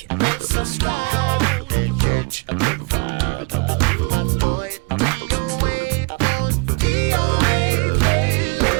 and subscribe. Come on and catch a vibe. Boy, DOA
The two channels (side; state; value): left; quieter; 29.1 dB